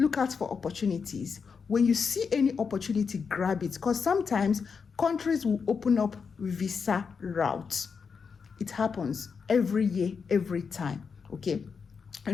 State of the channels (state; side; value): quieter; right; 5.7 dB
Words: out for opportunities. When you see any opportunity, grab it, because sometimes countries will open up visa routes. It happens every year, every time. Okay.